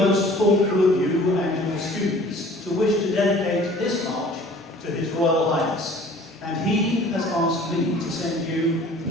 thoughtful of you and your students to wish to dedicate this march to His Royal Highness, and he has asked me to send you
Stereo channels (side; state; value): both; normal; correlation 0.49